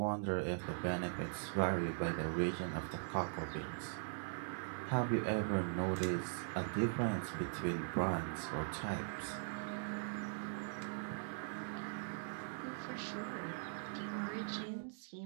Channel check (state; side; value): silent; left; digital silence